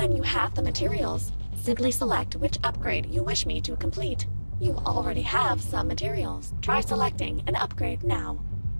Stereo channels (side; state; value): both; inverted; correlation -1.00